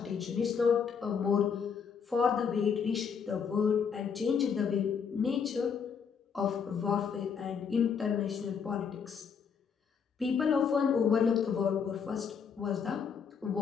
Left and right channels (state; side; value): quieter; right; 6.6 dB